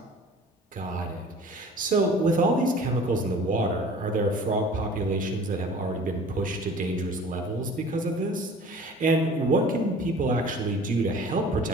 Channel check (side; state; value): both; normal; correlation 0.46